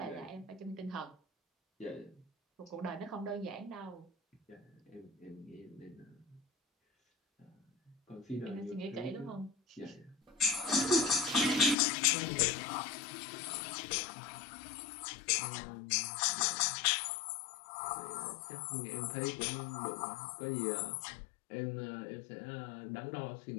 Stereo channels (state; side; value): drops out; right; at 11.8 s